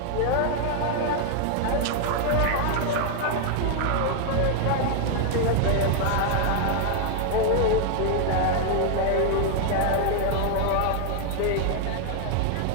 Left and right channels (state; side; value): different; both; correlation 0.00